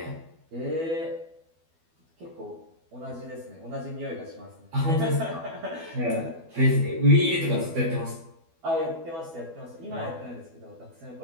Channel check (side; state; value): left; late; 12 ms